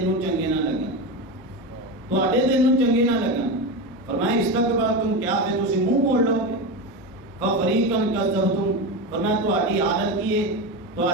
نو چنگے نہ لگن تواڈے دل نو چنگے نہ لگن فرمایا استکبرتم کیا پھر تسی منہ موڑ لو گے ففریقا کذبتم فرمایا تواڈی حالت کی ہے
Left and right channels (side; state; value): both; normal; correlation 0.19